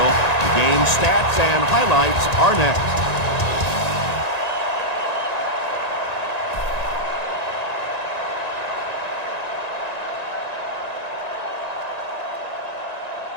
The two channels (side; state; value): right; late; 1.9 ms